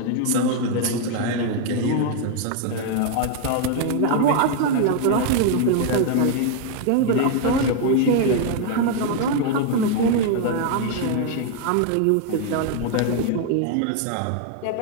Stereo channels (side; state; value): both; different; correlation 0.00